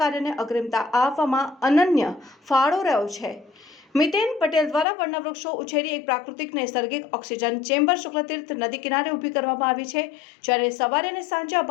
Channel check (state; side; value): drops out; right; at 4.9 s